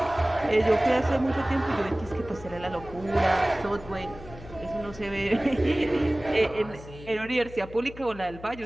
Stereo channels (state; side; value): noise; left; hum, 16 dB below the sound